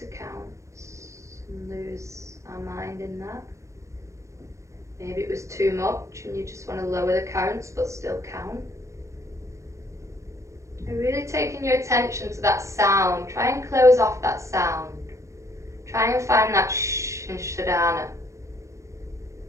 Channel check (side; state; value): left; late; 0.15 ms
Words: counts and lose our mind in that. Maybe it was too much and you just want to lower the counts but still count. You're really taking your attention to that sound. Try and close off that sound. Try and find that shh in Shodhana.